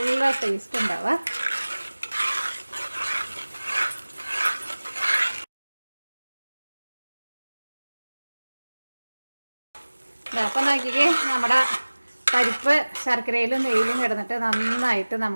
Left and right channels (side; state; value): both; inverted; correlation -1.00